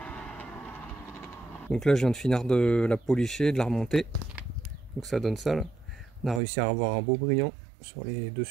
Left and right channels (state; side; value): drops out; left; at 6.4 s